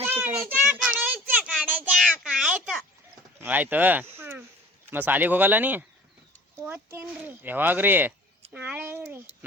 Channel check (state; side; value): normal; both; correlation 0.46